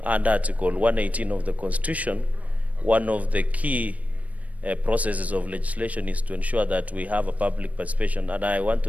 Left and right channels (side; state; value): left; late; 0.069 ms